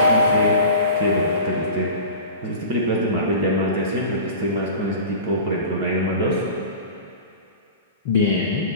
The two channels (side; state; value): both; inverted; correlation -0.36